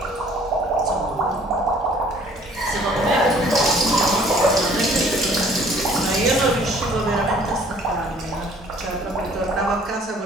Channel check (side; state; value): both; normal; correlation 0.56